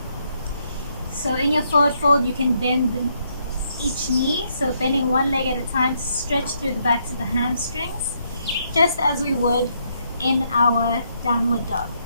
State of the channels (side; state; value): both; inverted; correlation -0.75